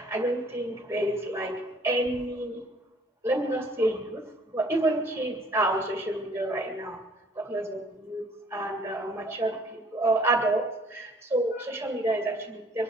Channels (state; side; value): normal; both; correlation 0.58